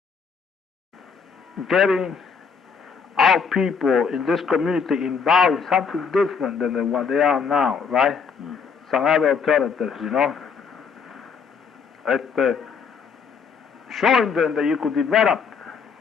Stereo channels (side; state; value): right; quieter; 5.8 dB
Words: Getting our people in this community involved in something different than what they are now, right? Some other alternatives, you know? Showing them that you could develop